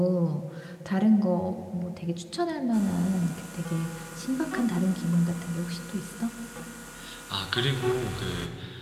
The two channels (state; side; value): identical; both; correlation 1.00